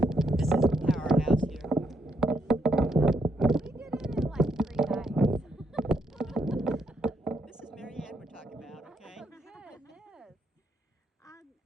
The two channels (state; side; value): normal; both; correlation 0.77